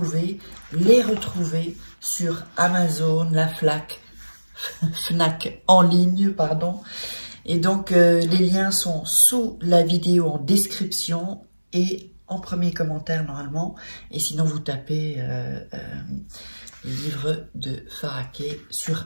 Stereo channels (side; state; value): both; inverted; correlation -1.00